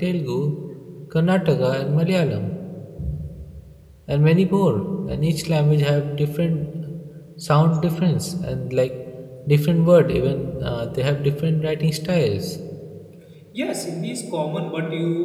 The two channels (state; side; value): identical; both; correlation 1.00